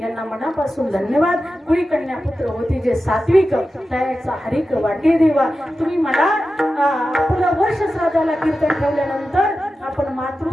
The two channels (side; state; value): both; normal; correlation 0.92